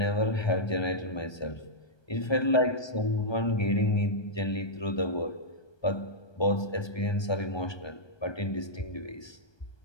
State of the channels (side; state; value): right; late; 1.2 ms